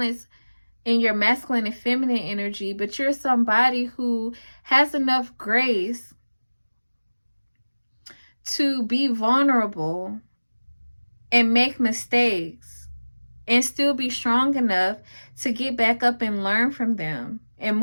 in your masculine and feminine energy, but you're somebody who has enough grace to be vulnerable and make mistakes and still be strong enough to get back up and learn from them and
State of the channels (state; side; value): inverted; both; correlation -1.00